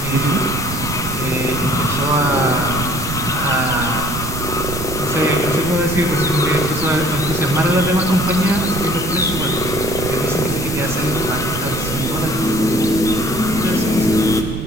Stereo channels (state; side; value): noise; right; rumble, 7 dB below the sound